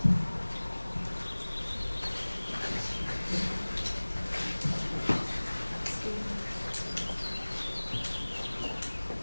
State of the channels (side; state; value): both; inverted; correlation -1.00